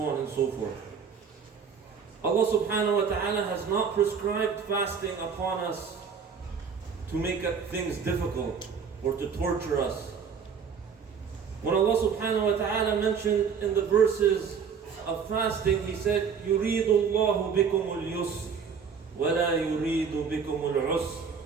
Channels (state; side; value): quieter; left; 6.3 dB